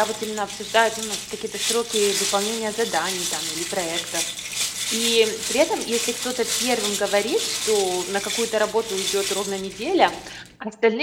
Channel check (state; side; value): identical; both; correlation 1.00